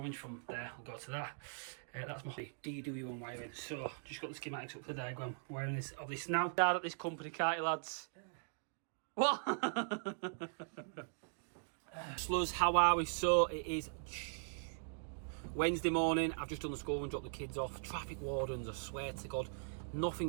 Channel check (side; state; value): left; silent; digital silence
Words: from there, I'll go to that. That's my DW1 wiring. So just got the schematics up for the diagram. Wiring this of this now. Dad at this company, can't you, lads? What? Sluz, how are we? So it is Wednesday morning. I've just done the school and dropped the kids off. Traffic wardens, I swear to God,